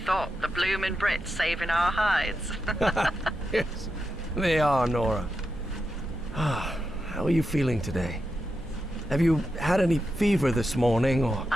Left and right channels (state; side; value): normal; both; correlation 0.87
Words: thought the bloomin' Brits saving our hides? Yes, they are, Nora. How are you feeling today? Have you had any fever this morning, or...?